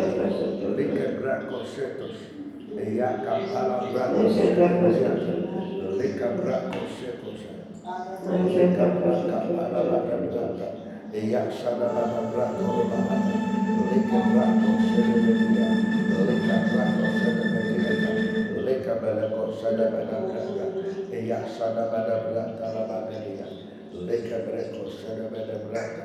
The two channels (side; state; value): both; identical; correlation 1.00